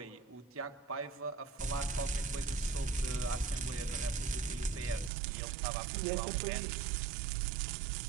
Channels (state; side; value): drops out; left; at 5.1 s